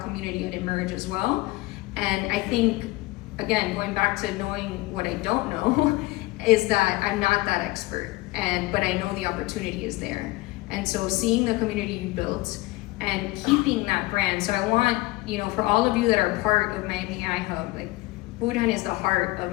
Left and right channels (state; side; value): quieter; right; 20.8 dB